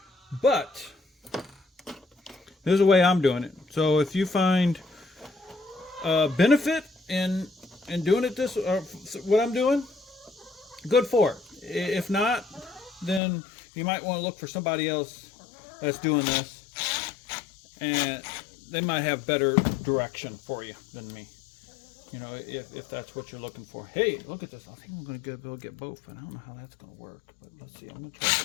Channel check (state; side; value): drops out; right; at 13.2 s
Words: but this is the way I'm doing it. So if you find benefit in doing it this, what I'm doing, good for it. If not, then you might want to look for somebody else that's doing this, and they might have better direction for you than me. You know, if that's what you're looking for. Hey, look at this. I think I'm going to go get both, but I don't know how that's going to work. But let's see. I'm going to